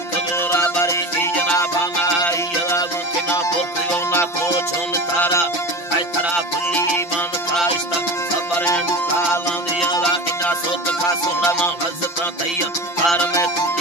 बारे की जनाबाना यदा गुना पोखियो ना कोचोन तारा आई तरा बुल्ली मान काइस्ता सबरे काला दिया ला इना सोत का सोना मा हजता तैया कार में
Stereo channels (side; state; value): right; late; 5.8 ms